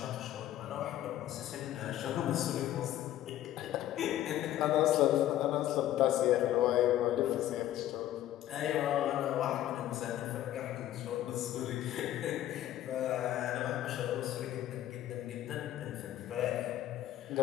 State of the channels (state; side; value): quieter; right; 13.0 dB